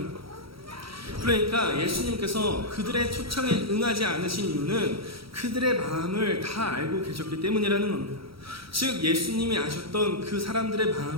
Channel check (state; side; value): late; left; 0.75 ms